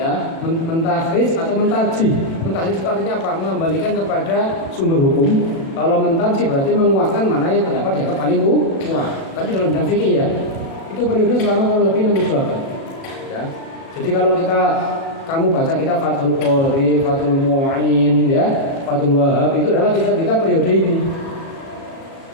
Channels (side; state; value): right; late; 37 ms